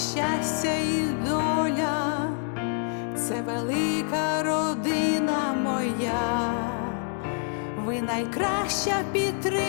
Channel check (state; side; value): silent; right; 57 dB below the other